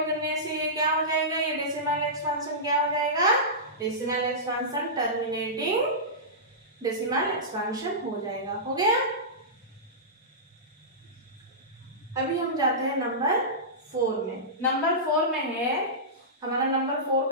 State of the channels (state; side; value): normal; both; correlation -0.17